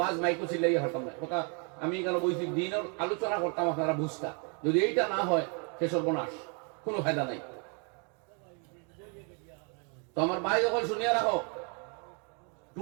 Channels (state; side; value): quieter; left; 37.1 dB